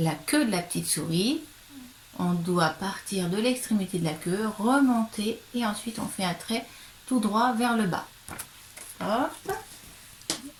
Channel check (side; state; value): both; identical; correlation 1.00